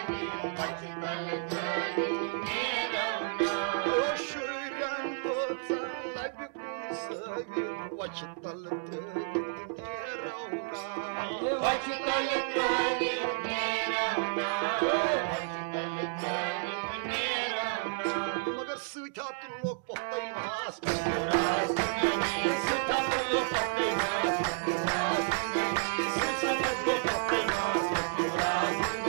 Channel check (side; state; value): left; silent; digital silence